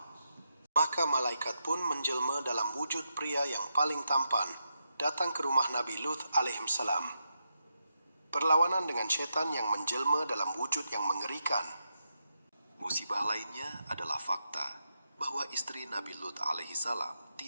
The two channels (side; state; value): both; inverted; correlation -0.84